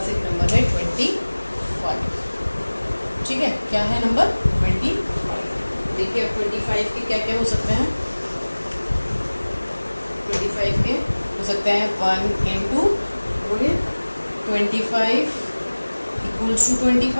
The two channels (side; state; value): both; inverted; correlation -1.00